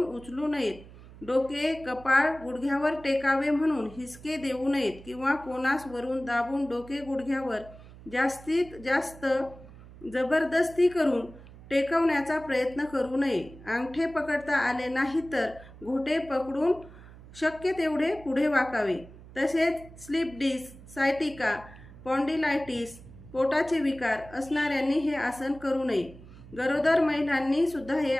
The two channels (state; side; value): noise; right; hum, 19 dB below the sound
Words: उचलू नयेत। डोके कपाळ गुडघ्यावर टेकावे म्हणून हिसके देऊ नयेत किंवा कोनास वरून दाबून डोके गुडघ्यावर जास्तीत जास्त जबरदस्ती करून टेकवण्याचा प्रयत्न करू नये। अंगठे पकडता आले नाही तर घोटे पकडून शक्य तेवढे पुढे वाकावे। तसेच स्लिप डिस्क, सायटिका, स्पॉन्डिलायटिस, पोटाचे विकार असणाऱ्यांनी हे आसन करू नये। गरोदर महिलांनी सुद्धा हे